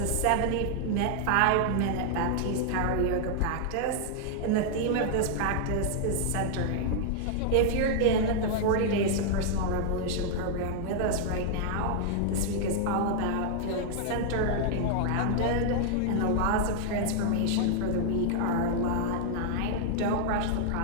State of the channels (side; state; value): both; different; correlation 0.00